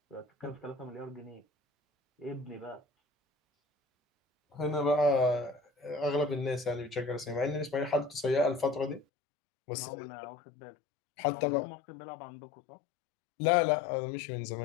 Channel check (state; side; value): drops out; right; at 9.1 s